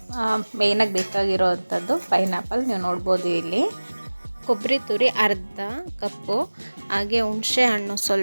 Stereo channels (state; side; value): inverted; both; correlation -1.00